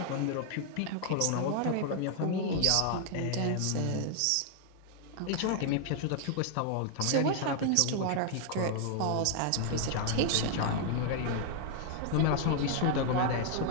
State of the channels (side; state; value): both; different; correlation 0.00